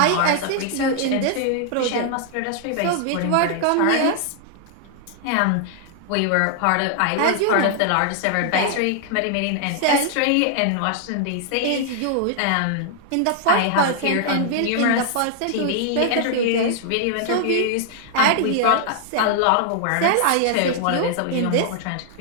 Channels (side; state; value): both; different; correlation 0.00